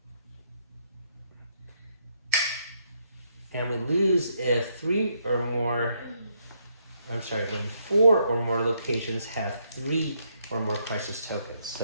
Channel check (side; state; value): both; inverted; correlation -0.74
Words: And we lose if 3 or more, I'm sorry, when 4 or more locations have 3 or more crisis tokens.